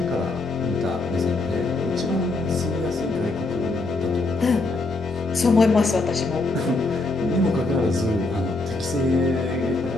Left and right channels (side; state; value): right; quieter; 3.2 dB